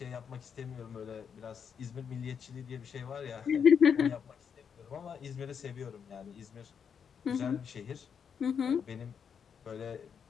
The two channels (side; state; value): right; quieter; 7.1 dB